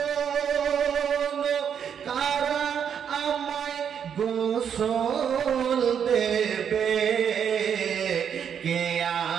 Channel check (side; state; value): left; quieter; 8.0 dB